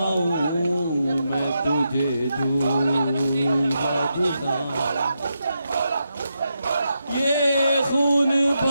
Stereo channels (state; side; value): inverted; both; correlation -0.85